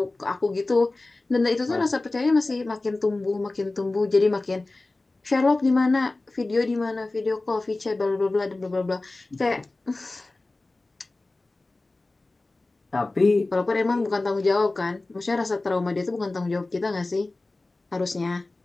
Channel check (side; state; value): right; quieter; 3.1 dB